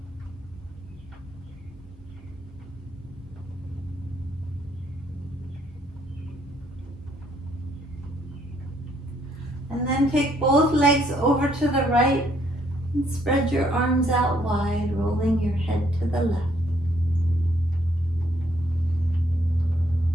And then take both legs over to the right and spread your arms out wide, rolling your head to the left.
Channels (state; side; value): normal; both; correlation 0.69